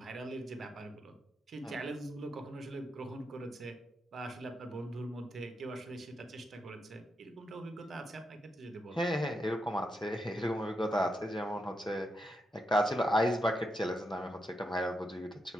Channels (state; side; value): normal; both; correlation 0.84